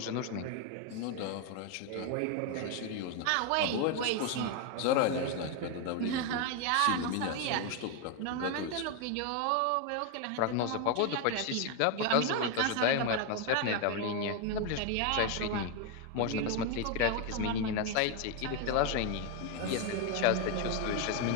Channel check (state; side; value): different; both; correlation 0.01